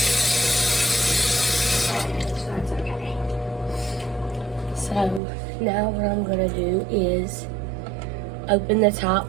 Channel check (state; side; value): drops out; left; at 5.2 s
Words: So that's okay. So now what I'm gonna do is open the top